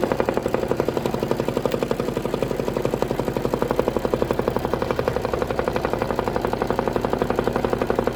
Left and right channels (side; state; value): both; identical; correlation 1.00